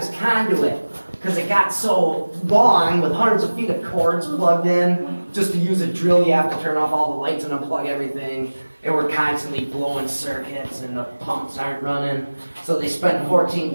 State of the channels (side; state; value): both; inverted; correlation -1.00